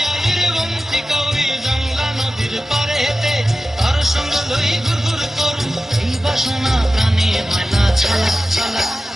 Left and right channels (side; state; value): both; normal; correlation 0.94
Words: বন্তিকা ওই জংলা নদীর পারে হেতে তর সঙ্গ লই ঘুর ঘুর করু এই বাসনা প্রাণে ময়না ছলা ছলা